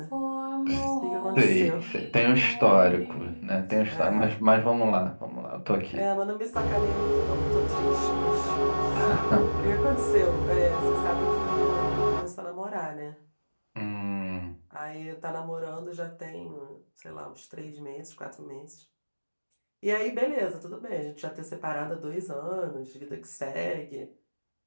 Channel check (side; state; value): both; inverted; correlation -1.00